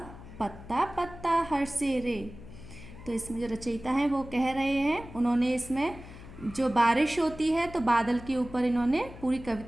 पत्ता पत्ता हरसे रे। तो इसमें जो रचयिता हैं वो कह रहे हैं, उन्होंने इसमें जो बारिश होती है तो बादल के ऊपर इन्होंने पूरी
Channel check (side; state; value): left; noise; hum, 16 dB below the sound